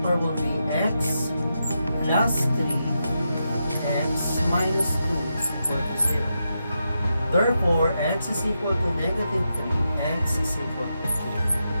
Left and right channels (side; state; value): both; inverted; correlation -0.86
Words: will be x plus 3, x minus 2 is equal to 0. Therefore, x is equal to negative 3, x is equal to